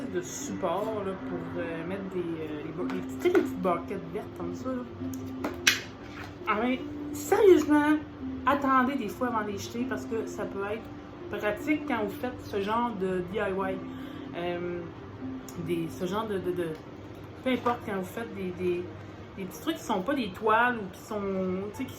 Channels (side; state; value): both; identical; correlation 1.00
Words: de support là, pour mettre les petites barquettes vertes comme ça. Là. Ah, mais sérieusement, attendez des fois avant de les jeter parce que ça peut être pratique quand vous faites ce genre de DIY. Ce genre de peu importe quand vous faites des petits trucs qui sont pas des toiles ou qui sont, tu sais, qui